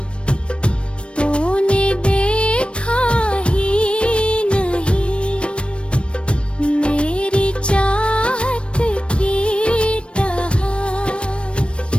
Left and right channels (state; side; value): late; right; 0.059 ms